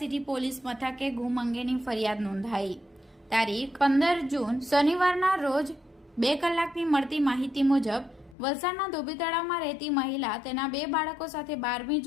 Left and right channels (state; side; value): drops out; right; at 8.3 s